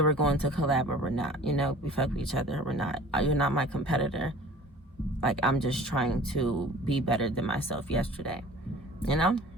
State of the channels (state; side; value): normal; both; correlation 0.45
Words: we're going to collab or we're not, you know, we fuck with each other or we're not. You're not my competitor. Like, I'm just trying to be better than myself yesterday, you know?